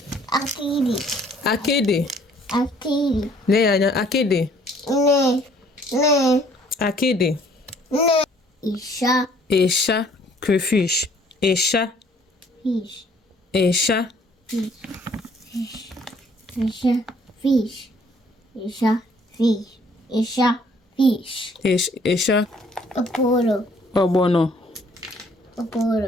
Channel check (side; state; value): both; normal; correlation 0.60